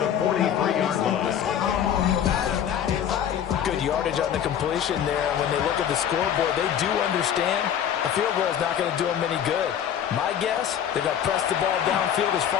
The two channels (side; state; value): right; quieter; 9.3 dB